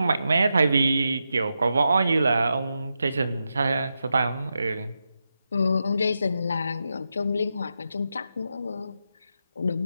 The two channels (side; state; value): both; inverted; correlation -0.87